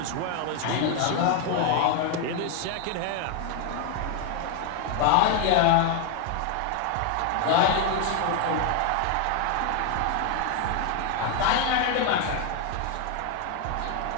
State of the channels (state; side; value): different; both; correlation 0.01